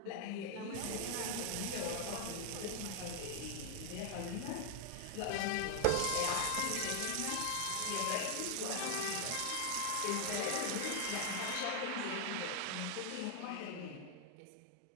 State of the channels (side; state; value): both; different; correlation 0.00